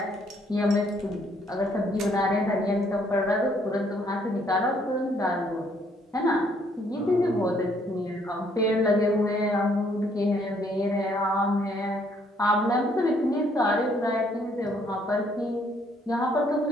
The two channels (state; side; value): normal; both; correlation 0.67